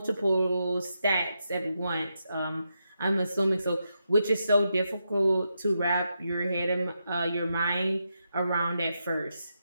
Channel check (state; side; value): inverted; both; correlation -0.84